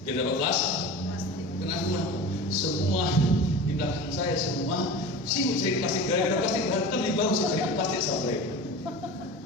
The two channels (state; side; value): normal; both; correlation 0.33